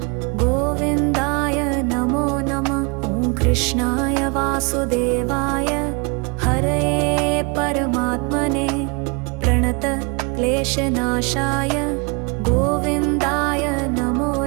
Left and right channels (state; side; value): quieter; left; 31.7 dB